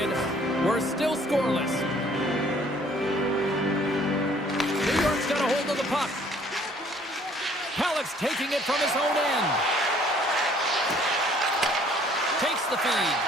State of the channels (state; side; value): normal; both; correlation 0.59